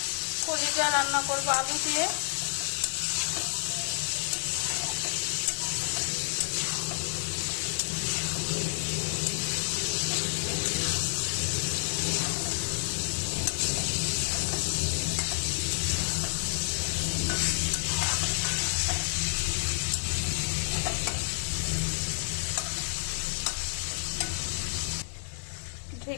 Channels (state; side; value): silent; right; 58 dB below the other